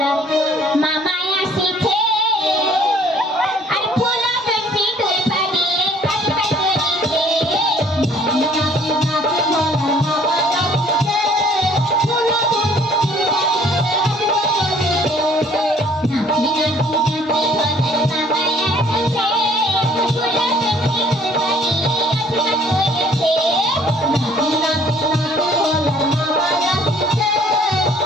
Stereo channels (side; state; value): both; normal; correlation 0.58